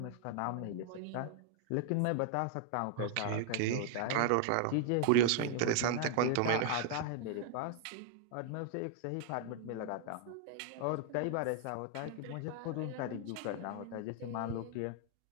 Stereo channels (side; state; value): both; different; correlation 0.00